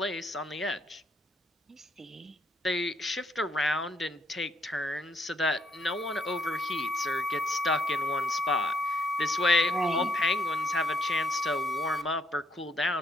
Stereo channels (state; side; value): normal; both; correlation 0.71